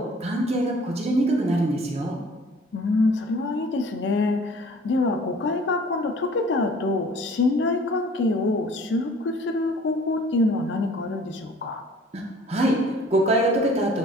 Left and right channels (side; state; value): both; normal; correlation 0.51